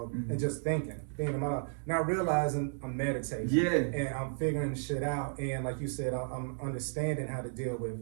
and just thinking about, not realizing I'm meditating. Yeah. And I'm figuring shit out. And like you said, I'm understanding how to deal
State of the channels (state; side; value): silent; left; digital silence